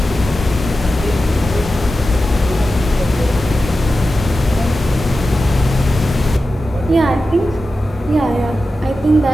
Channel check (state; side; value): normal; both; correlation 0.92